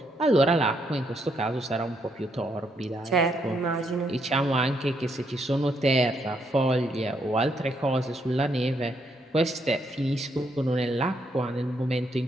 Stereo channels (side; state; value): both; normal; correlation 0.75